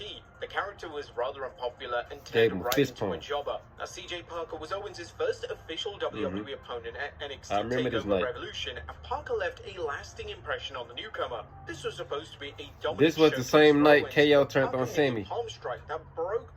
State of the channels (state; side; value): identical; both; correlation 1.00